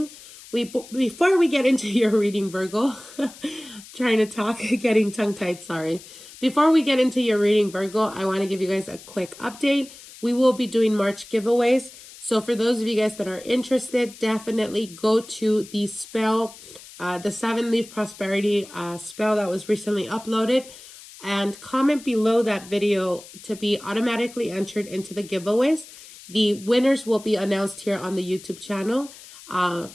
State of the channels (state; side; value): noise; left; hiss, 18 dB below the sound